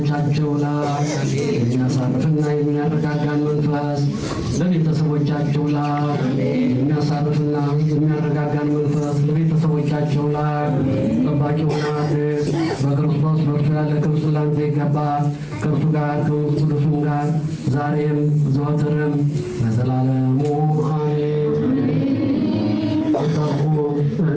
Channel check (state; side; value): identical; both; correlation 1.00